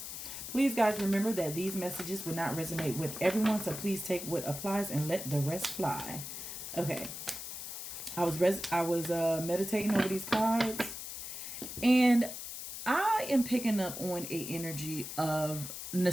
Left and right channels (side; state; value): left; noise; hiss, 8 dB below the sound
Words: Please, guys, remember that these messages will not resonate with everyone, so please take what applies and let the rest fly. Okay. I was meditating over these cards, and I am picking up on a energy of